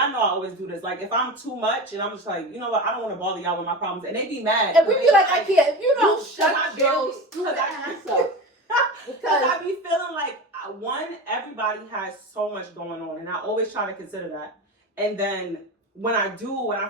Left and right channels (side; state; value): both; normal; correlation 0.27